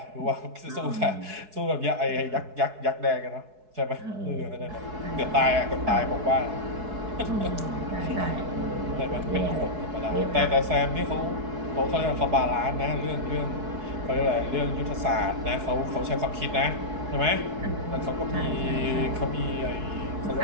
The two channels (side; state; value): left; late; 4.7 ms